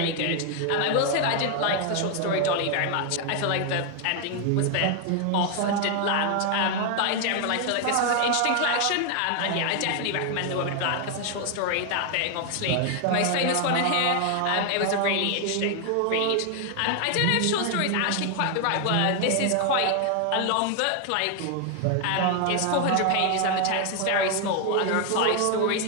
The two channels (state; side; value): different; both; correlation 0.00